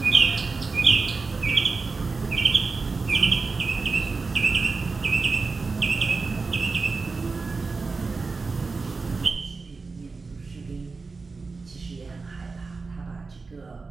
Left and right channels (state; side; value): quieter; left; 4.2 dB